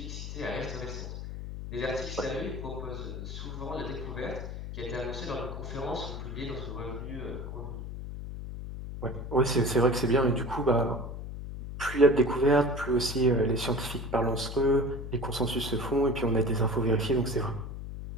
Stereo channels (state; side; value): noise; left; hum, 7 dB below the sound